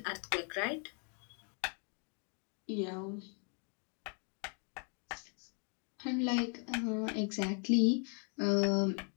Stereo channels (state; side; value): quieter; right; 40.0 dB